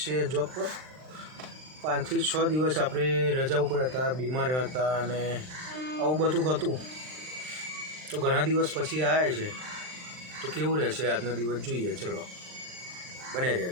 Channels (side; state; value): left; late; 39 ms